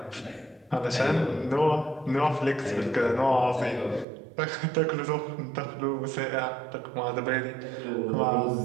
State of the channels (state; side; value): drops out; left; at 4.0 s